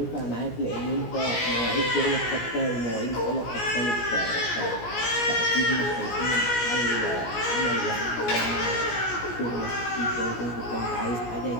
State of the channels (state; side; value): late; right; 17 ms